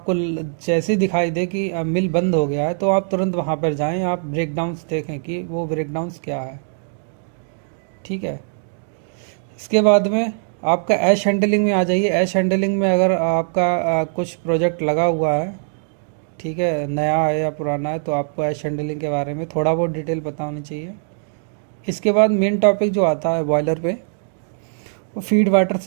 जैसे ही दिखाई दे कि मिल बंद हो गया है, तो आप तुरंत वहाँ पर जाएं, आप ब्रेक डाउन्स देखें कि वो ब्रेक डाउन्स क्या है, ठीक है। इसके बाद में आपका ऐश हैंडलिंग में आ जाइए। ऐश हैंडलिंग में अगर आपका कुछ प्रोजेक्ट लगा हुआ है, ठीक है, नया है या पुराना है, तो आपको ऐश हैंडलिंग के बारे में थोड़ा बहुत डिटेल पता होनी चाहिए। इसके बाद मेन टॉपिक जो आता है बॉयलर पे, वो फीड वाटर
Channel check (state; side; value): silent; left; digital silence